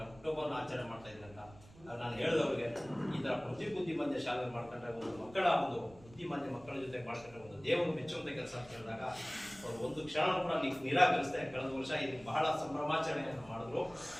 ಹುಟ್ಟುಹಬ್ಬವನ್ನು ಆಚರಣೆ ಮಾಡ್ತಾ ಇದ್ರಂತ ನಾನು ಹೇಳಿದವ್ರಿಗೆ ಈ ತರ ಬುದ್ಧಿಮಾಂದ್ಯ ಶಾಲೆ ಮಾಡ್ಕೊಂಡ್ರೆ ಒಂದು ಮಕ್ಕಳ ಒಂದು ಬುದ್ಧಿಮಾಂದ್ಯ ಮಕ್ಕಳ ಜೊತೆ ಮಾಡ್ಕೊಂಡ್ರೆ ಒಂದು ದೇವರು ಮೆಚ್ಚುವಂತ ಕೆಲಸ ಅಂತ ಹೇಳಿದಾಗ ಅವರು ಒಂದು ಕ್ಷಣ ಕೂಡ ನಿರಾಕರಿಸ್ದೆ ಕಳೆದ ವರ್ಷ ಇಲ್ಲಿ ಬಹಳ ಸಂಭ್ರಮಾಚರಣೆಯನ್ನು ಮಾಡಿದ್ರು.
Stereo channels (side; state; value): right; noise; rumble, 22 dB below the sound